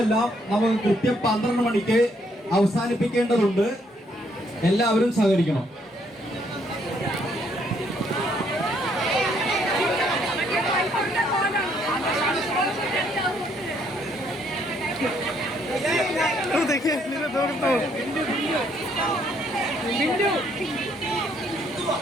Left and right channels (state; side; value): normal; both; correlation 0.69